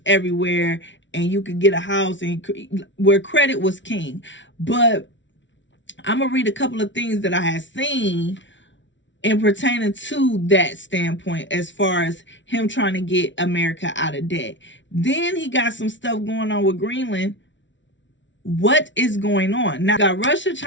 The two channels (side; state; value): right; late; 0.55 ms